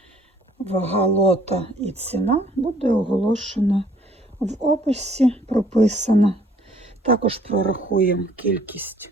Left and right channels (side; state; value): both; normal; correlation 0.59